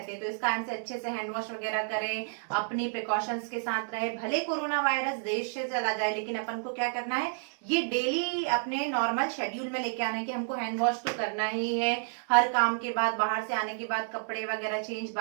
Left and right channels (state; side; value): silent; left; 58 dB below the other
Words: हैं। तो इस कारण से अच्छे से हैंड वॉश वगैरह करें, अपनी प्रिकॉशंस के साथ रहे। भले कोरोना वायरस देश से चला जाए, लेकिन अपन को क्या करना है, ये डेली अपने नॉर्मल शेड्यूल में लेके आना है कि हमको हैंड वॉश तो करना ही है, हर काम के बाद, बाहर से आने के बाद कपड़े वगैरह चेंज